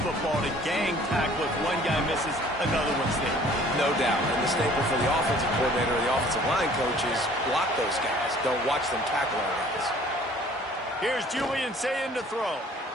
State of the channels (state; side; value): normal; both; correlation 0.53